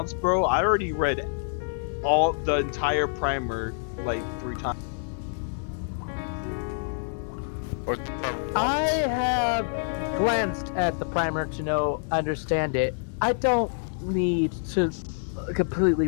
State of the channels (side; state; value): right; silent; digital silence